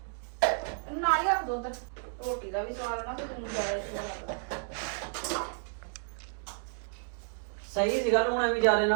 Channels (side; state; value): left; silent; 57 dB below the other